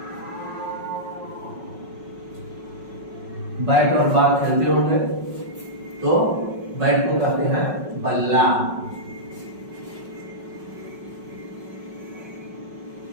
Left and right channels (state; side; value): late; left; 5.4 ms